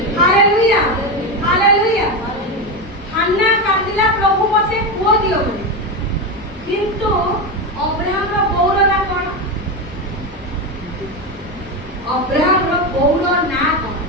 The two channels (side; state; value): both; normal; correlation 0.14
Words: hallelujah hallelujah. Hannah କାନ୍ଦିଲା ପ୍ରଭୁ ମୋତେ ପୁଅ ଦିଅ ବୋଲି କିନ୍ତୁ ଅବ୍ରାହମର ବୋଉର ନାଁ କଣ ଅବ୍ରାହମର ବୋଉର ନାଁ କଣ